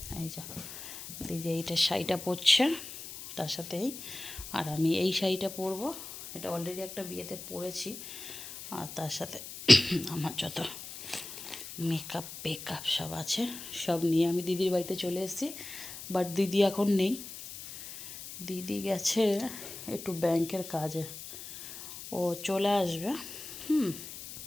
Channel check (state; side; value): noise; left; hiss, 11 dB below the sound